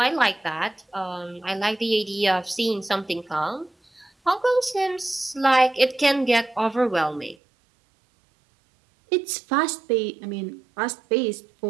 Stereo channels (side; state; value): left; drops out; at 7.4 s